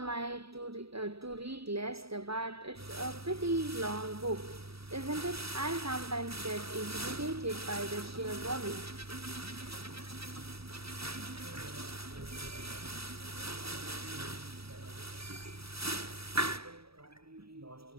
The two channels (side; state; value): left; late; 0.77 ms